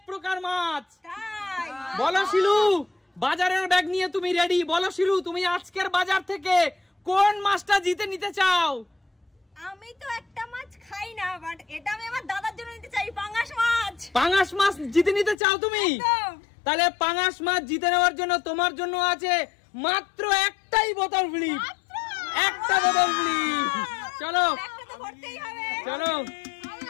প্রকার মাছ। বলো শিলু, বাজারের ব্যাগ নিয়ে তুমি রেডি? বলো শিলু, তুমি আজকের বাজার থেকে কোন মাছটা জিতে নিতে চাও? আমি তো একটা মাছ খাই না, বাট এটা আমি আমার দাদার জন্য নিতে চাই, পাঙ্গাস মাছ। পাঙ্গাস মাছ জিতে নিতে চাও তুমি? তাহলে পাঙ্গাস মাছ জিতে নেওয়ার জন্য তোমার জন্য আছে মাত্র একটাই বোতল ফ্রি। একটা বোতল ফ্রি। চলো চলো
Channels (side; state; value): right; drops out; at 15.4 s